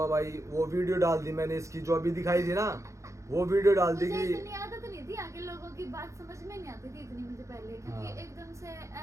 भाई, वो वीडियो डाल दी मैंने इसकी जो अभी दिखाई थी ना, वो वीडियो डाल दी मुझे कि इतनी आदत नहीं थी, आगे लोगों की बात समझ में नहीं आती थी इतनी मुझे पहले, क्योंकि हाँ। एकदम से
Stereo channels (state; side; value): late; left; 0.15 ms